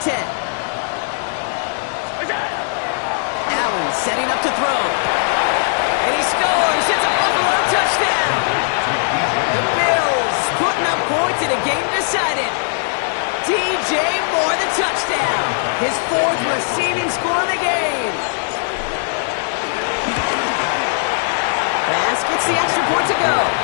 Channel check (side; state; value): right; silent; digital silence